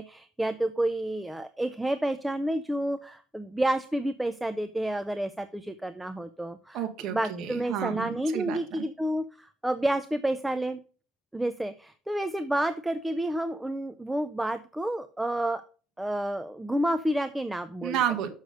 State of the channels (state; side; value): normal; both; correlation 0.87